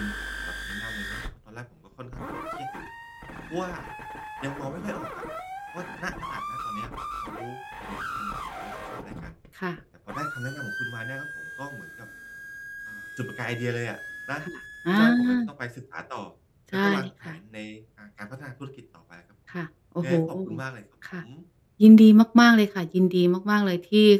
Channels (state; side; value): identical; both; correlation 1.00